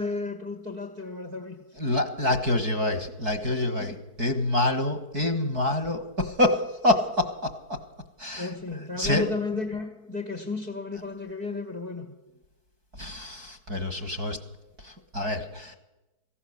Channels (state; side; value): late; left; 4.6 ms